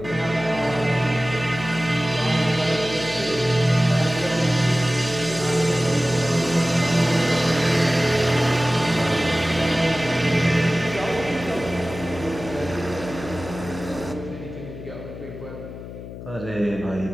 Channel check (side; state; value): left; noise; hum, 12 dB below the sound